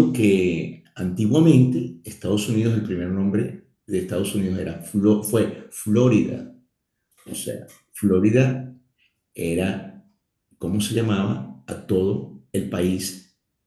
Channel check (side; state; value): both; identical; correlation 1.00